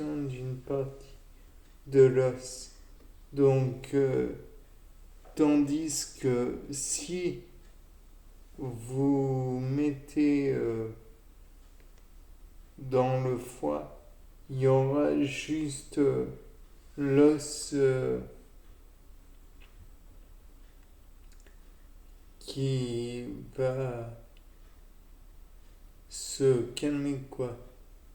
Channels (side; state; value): both; identical; correlation 1.00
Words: d'une partie de l'os. Donc, tandis que si vous mettez dans le foie, il y aura juste l'os qui va se calmer, quoi.